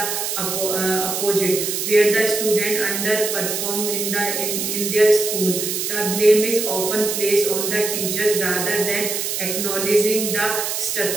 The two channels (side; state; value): right; noise; hiss, 2 dB below the sound